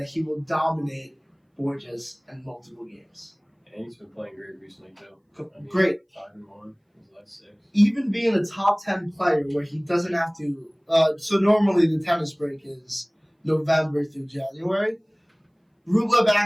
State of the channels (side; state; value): both; identical; correlation 1.00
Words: he will dominate Borges in multiple games. And he's been playing great recently, too. Great. 5-1, his last 6. Even being a top 10 player where he doesn't have to, so normally the tennis break is November through January. Rublev